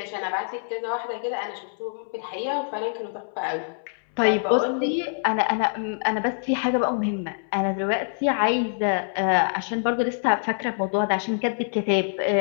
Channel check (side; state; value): right; silent; 62 dB below the other